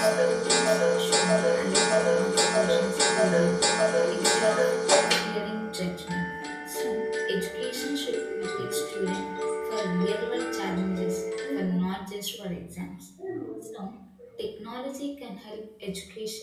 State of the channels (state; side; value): identical; both; correlation 1.00